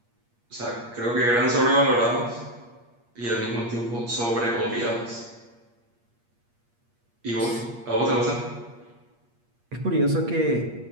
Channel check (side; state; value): left; late; 8.5 ms